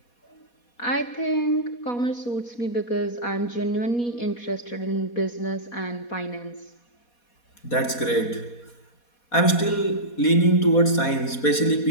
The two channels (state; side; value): late; right; 4.2 ms